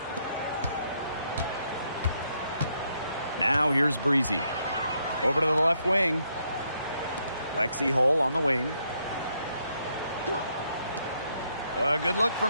Now here's Breezy. Over to the left wing. Lexi Hull on the wing. A good look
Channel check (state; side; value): inverted; both; correlation -0.75